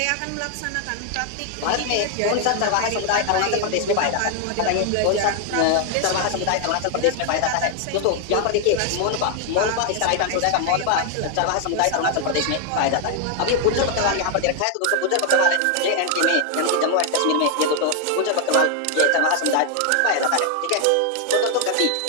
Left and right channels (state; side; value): different; both; correlation 0.00